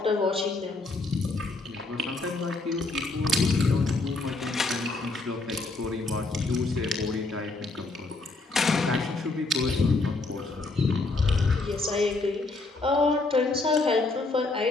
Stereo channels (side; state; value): right; quieter; 3.3 dB